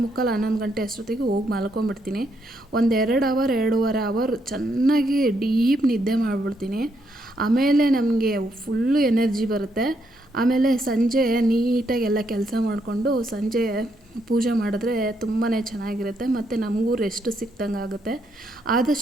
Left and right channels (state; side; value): normal; both; correlation 0.76